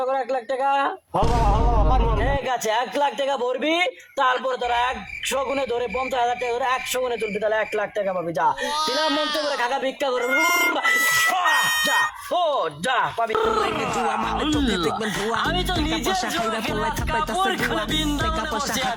1 লাখ টাকা? ঠিক আছে, 1 লাখ টাকা ভরবি, তারপরে তোরা 100 গুণে ধরে 50,000 টাকা ধরে 100 গুণে তুলবি, তাহলে 1 লাখ টাকা পাবি। যা তিনার মন্ত্র করে খাকা ভিক্ষা করে যা, ও যা পাবি। আমি তো নিজে জুয়া খেলে আজ কাপড় খুলে বৃন্দাবনে বসে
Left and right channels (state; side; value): identical; both; correlation 1.00